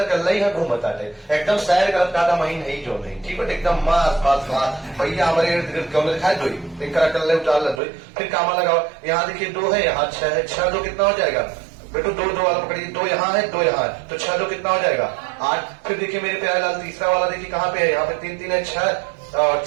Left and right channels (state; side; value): drops out; left; at 7.8 s